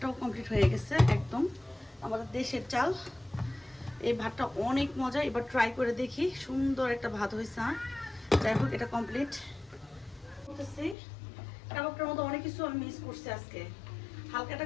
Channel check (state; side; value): drops out; right; at 11.0 s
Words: কমপ্লিট হয়ে গেছে একদম, আমাদের দেশের চাল। এই ভাতটা অনেক মজা, এবার ট্রাই করে দেখি। সুন্দর একটা ভাত হয়েছে। যাই হোক, এটা কমপ্লিট করতেছি। কাবাবটার মধ্যে অনেক কিছু আমি মিস করছি আজকে। হালকা